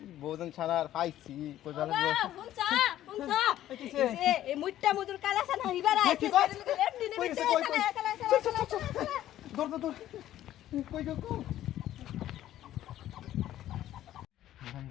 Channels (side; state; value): right; quieter; 12.9 dB